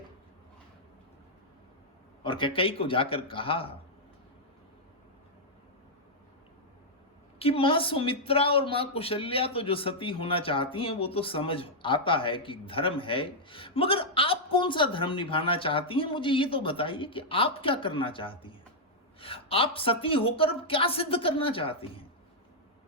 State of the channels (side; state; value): both; normal; correlation -0.06